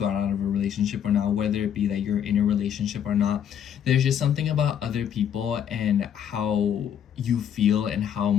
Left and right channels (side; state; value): right; quieter; 9.0 dB